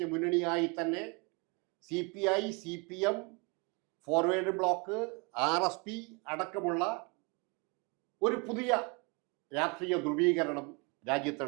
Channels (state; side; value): quieter; left; 31.0 dB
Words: മുന്നണിയായി തന്നെ CPI, CPM, forward block, RSP അടക്കമുള്ള ഒരു പുതിയ രാഷ്ട്രീയ ധ്രുവീകരണം